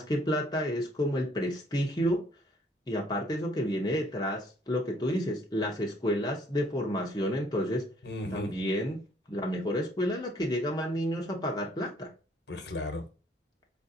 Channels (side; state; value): both; normal; correlation 0.62